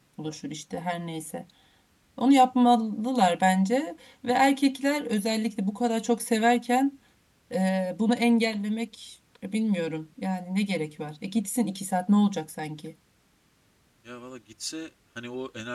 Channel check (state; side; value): identical; both; correlation 1.00